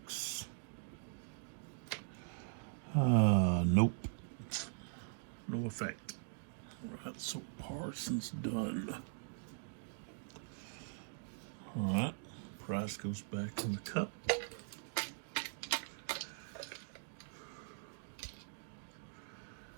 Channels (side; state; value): left; silent; digital silence